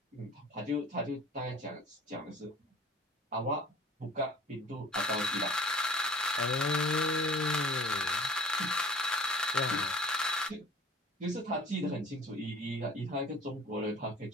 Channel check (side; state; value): both; normal; correlation 0.47